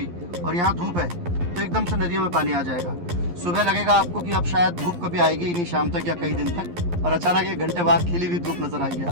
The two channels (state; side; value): late; left; 11 ms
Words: और यहाँ धूप है, तो एकदम से नदियों में पानी आ जाएगा। सुबह लगेगा आपको कि अब शायद धूप कभी आएगी ही नहीं, शाम तक या कई दिन तक, और अचानक 1 घंटे बाद खिली हुई धूप नजर आएगी